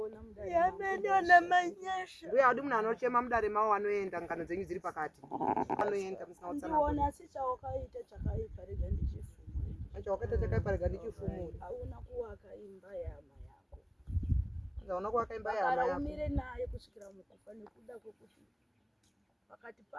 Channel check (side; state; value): both; identical; correlation 1.00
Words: mudare Mbuya wadi munhu anochema mudare mavo anoenda ngano dzenyu dziri pakati. Anoenda musina utsanana. ndiona asi chawakaita chakaipa rega ndichifumure Chawakaita chakaipa rega ndichifumure. hauna kuwaka imba yama yako Anzi hauna kuvaka imba yahama kana yako. umire naye kusvikira mukufa nekuda kwekuti pakati